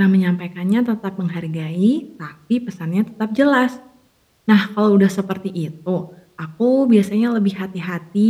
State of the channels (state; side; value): identical; both; correlation 1.00